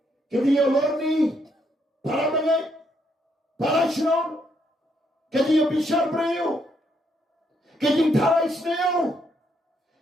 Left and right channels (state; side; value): normal; both; correlation 0.74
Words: Ka jing lorni. Para mangay. Para syaw. Kajing bishar brayo, kajing tharai snail,